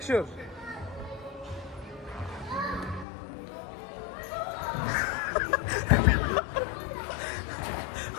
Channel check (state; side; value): drops out; right; at 3.1 s